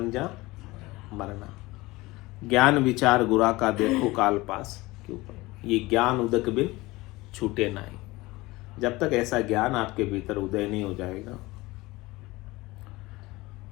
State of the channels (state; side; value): quieter; right; 20.8 dB